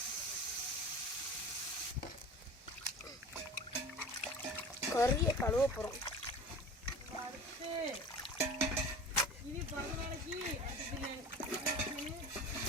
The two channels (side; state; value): both; normal; correlation 0.37